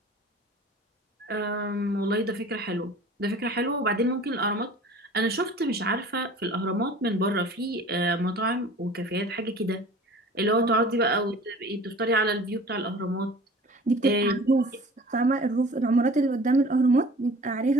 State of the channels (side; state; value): both; normal; correlation 0.44